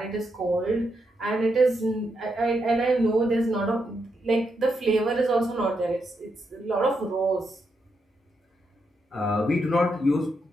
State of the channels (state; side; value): normal; both; correlation 0.82